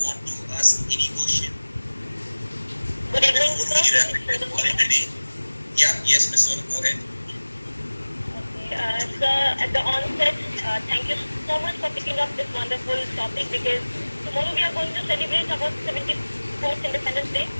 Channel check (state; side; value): inverted; both; correlation -1.00